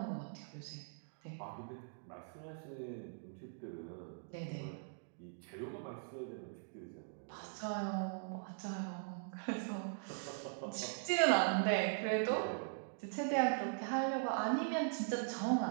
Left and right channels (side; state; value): left; silent; digital silence